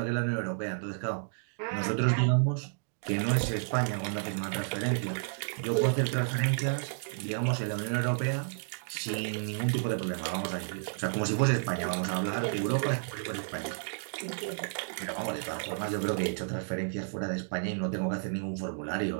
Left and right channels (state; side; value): silent; left; digital silence